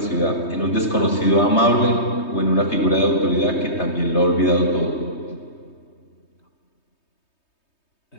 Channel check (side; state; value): right; late; 3.2 ms